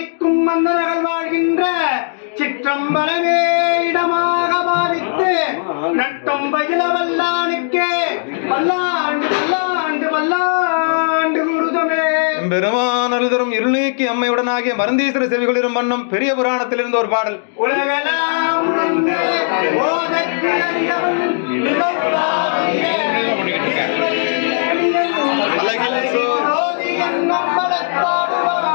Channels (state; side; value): silent; right; digital silence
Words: மன்னர்கள் வாழ்கின்ற சிற்றம்பலமே இடமாக பாவித்து நட்டும் பயில வல்லானுக்கே பல்லாண்டு பல்லாண்டு பல்லாண்டு குருதமே. பெருமானல் தரும் இருள் நீக்கி அம்மையுடனாகிய மருந்தீஸ்வர செவிகளிரும் வண்ணம் பெரிய புராணத்தில் இருந்த ஒரு பாடல். உலகெல்லாம் ஓதற்கு அறியவன்